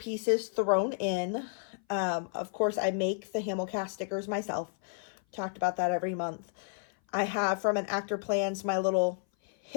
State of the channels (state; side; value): silent; right; 56 dB below the other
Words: thrown in. Of course, I make the Hamilcast stickers myself. Talked about that every month. I have from an Actor Plans my little